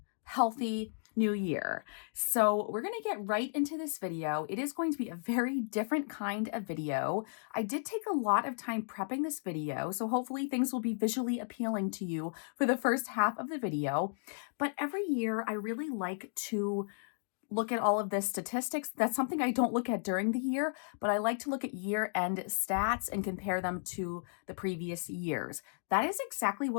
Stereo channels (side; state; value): right; silent; digital silence